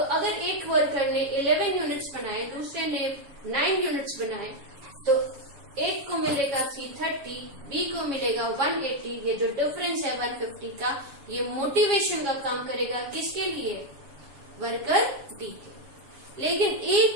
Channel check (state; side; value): late; left; 7.3 ms